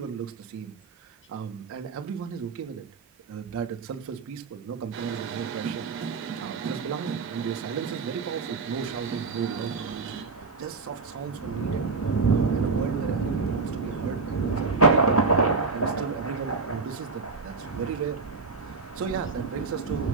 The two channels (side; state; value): left; quieter; 4.4 dB